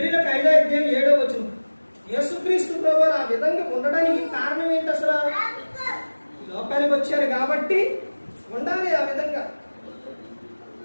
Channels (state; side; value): inverted; both; correlation -1.00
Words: 5:7 యేసుక్రీస్తు ప్రభువారు ఆ విధంగా ఉండడానికి కారణం ఏంటి? అసలు లోకానికి వచ్చారు కాబట్టి ఉండాలి ఆ విధంగా.